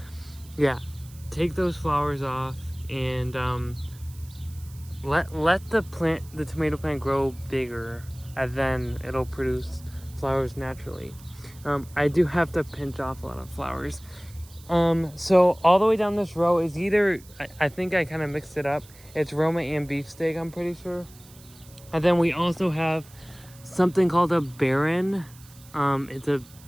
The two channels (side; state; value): right; noise; hiss, 23 dB below the sound